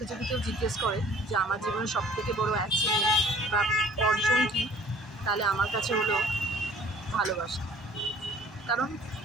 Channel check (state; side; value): normal; both; correlation 0.52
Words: যদি কেউ জিজ্ঞেস করে যে আমার জীবনের সবথেকে বড় অ্যাচিভমেন্ট বা অর্জন কী, তাহলে আমার কাছে হলো ভালোবাসা। কারণ